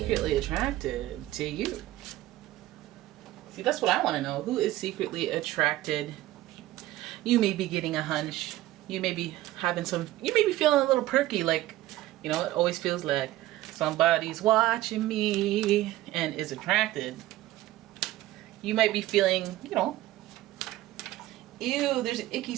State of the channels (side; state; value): left; quieter; 15.8 dB